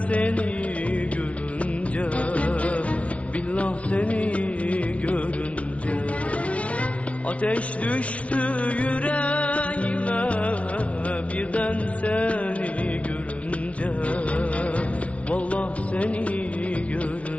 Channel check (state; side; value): late; right; 0.064 ms